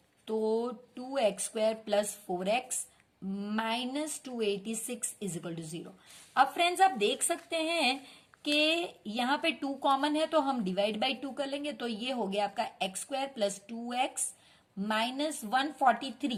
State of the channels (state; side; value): identical; both; correlation 1.00